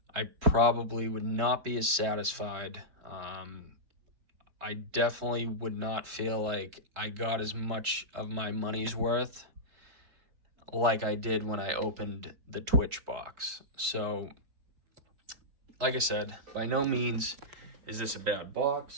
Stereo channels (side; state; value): left; late; 3.5 ms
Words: I probably would not be as satisfied. I definitely would not feel like I got as much of my money's worth like I did when I opened the Twitch box. So, like I said, by no means is this a bad